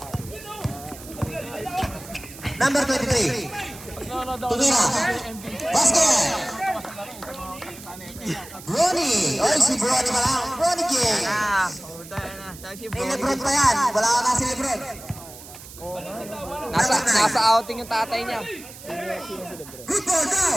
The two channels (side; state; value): right; noise; hiss, 16 dB below the sound